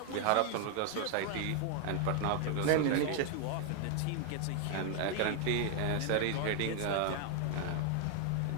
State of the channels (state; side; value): different; both; correlation 0.00